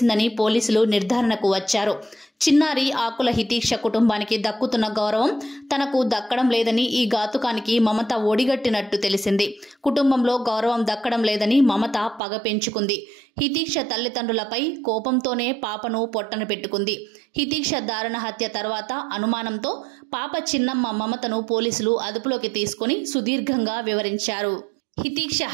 పోలీసులు నిర్ధారణకు వచ్చారు. చిన్నారి ఆకుల హితీక్ష కుటుంబానికి దక్కుతున్న గౌరవం తనకు దక్కడం లేదని ఈ ఘాతుకానికి మమత ఒడిగట్టినట్టు తెలిసింది. కుటుంబంలో గౌరవం దక్కడం లేదని మమత పగ పెంచుకుంది. హితీక్ష తల్లిదండ్రులపై కోపంతోనే పాపను పొట్టన పెట్టుకుంది. హితీక్ష దారుణ హత్య తర్వాత అనుమానంతో పాప చిన్నమ్మ మమతను పోలీసులు అదుపులోకి తీసుకుని సుదీర్ఘంగా వివరించారు. హితీక్ష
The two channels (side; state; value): left; drops out; at 12.2 s